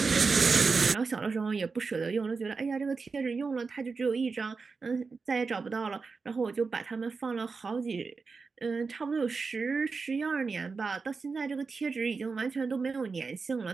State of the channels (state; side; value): quieter; left; 4.6 dB